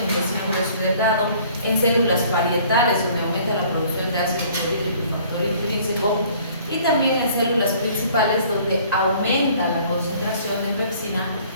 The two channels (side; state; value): both; inverted; correlation -0.55